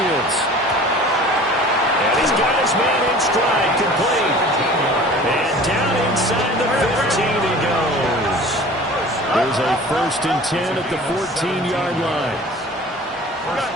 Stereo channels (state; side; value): normal; both; correlation 0.43